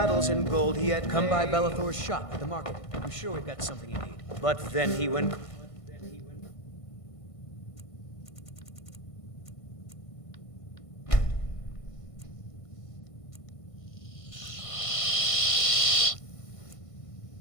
and gold he had Come by made. Bellathor's shop at the market. I'm sure we've got something you need. But then he went...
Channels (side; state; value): right; late; 1.5 ms